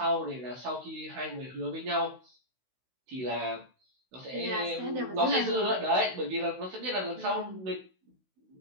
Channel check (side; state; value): left; late; 16 ms